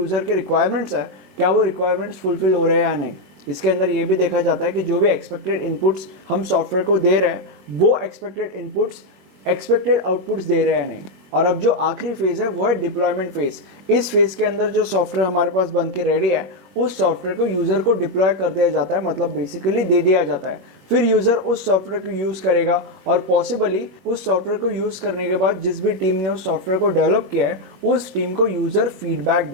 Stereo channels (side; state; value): left; late; 21 ms